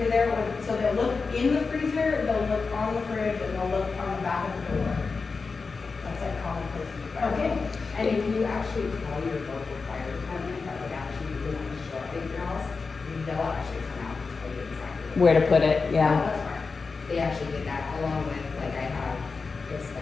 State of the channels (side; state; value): right; quieter; 4.5 dB